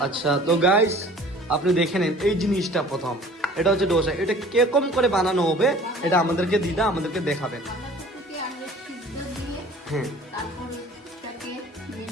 আচ্ছা, তো গাইস আপনি দেখে নেন এই জিনিসটা প্রথম। এটা হচ্ছে ডোসা। এটা কিরকম করে বানানো হবে এটা আমাদেরকে দিদা আমাদেরকে দেখাবেন। বাঁধাকপিকে আগে সিদ্ধ দিয়ে হ্যাঁ তারপর ওটাকে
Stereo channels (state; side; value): normal; both; correlation 0.48